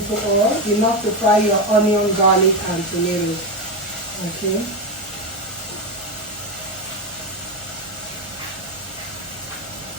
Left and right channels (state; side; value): noise; right; hum, 25 dB below the sound